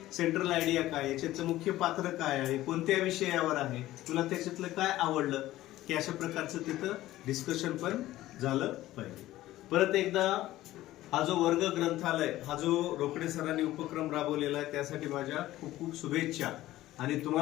सेंट्रल आयडिया काय, याच्यातलं मुख्य पात्र काय आहे, कोणत्या विषयावर आहे, तुला त्याच्यातलं काय आवडलं, की अशा प्रकारचं तिथं डिस्कशन पण झालं पाहिजे. परत एकदा हा जो वर्ग ग्रंथालय, हा जो रोकडे सरांनी उपक्रम राबवलेला आहे त्यासाठी माझ्या खूप खूप शुभेच्छा. आणि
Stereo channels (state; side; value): quieter; right; 15.5 dB